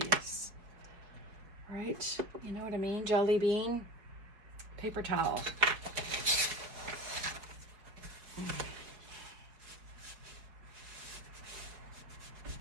Right? You know what I mean? Jelly bean. Paper towel.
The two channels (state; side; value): late; left; 4.9 ms